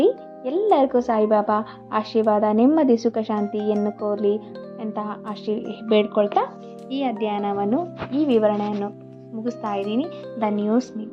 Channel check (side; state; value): both; identical; correlation 1.00